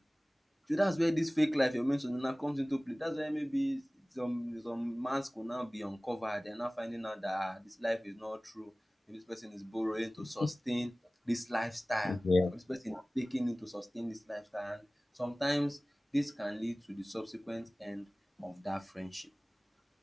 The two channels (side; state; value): both; normal; correlation 0.98